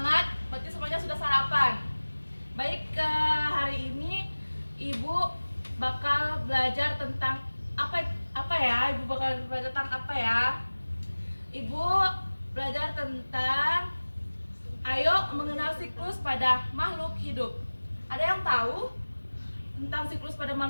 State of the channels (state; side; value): inverted; both; correlation -1.00